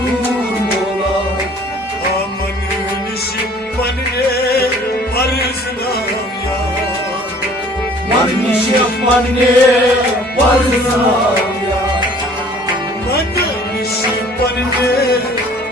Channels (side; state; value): both; normal; correlation 0.52